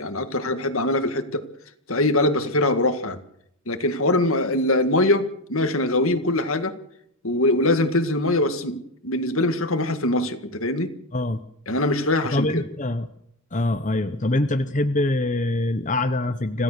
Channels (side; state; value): both; normal; correlation 0.14